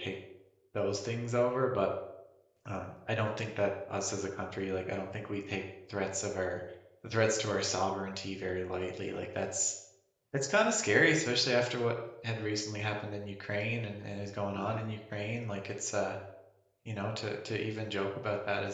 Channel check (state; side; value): identical; both; correlation 1.00